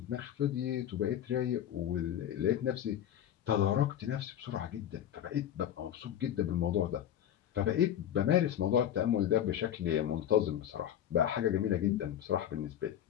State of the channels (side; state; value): right; quieter; 10.6 dB